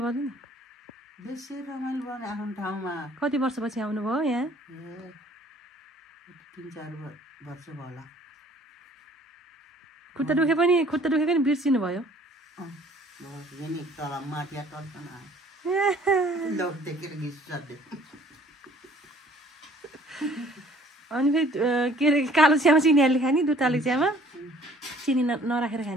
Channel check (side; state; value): both; normal; correlation 0.56